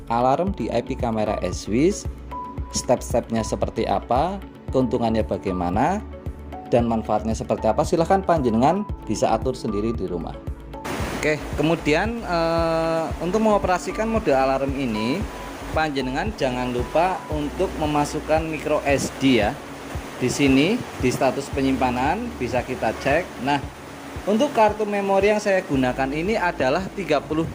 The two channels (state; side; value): identical; both; correlation 1.00